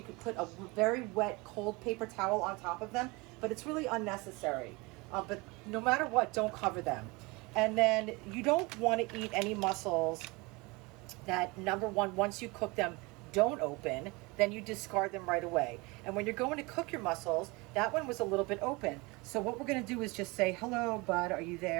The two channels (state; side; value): quieter; left; 25.4 dB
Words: could put a very wet, cold paper towel on top of them. But it's really unnecessary. But no matter what, don't cover them. And then you don't want to eat any mussels that, number one, once you cook them, don't open, then you discard them right away. And when you're going to cook your mussels, that one was a little bit open. So what we're going to do is just say, hello, bud, are you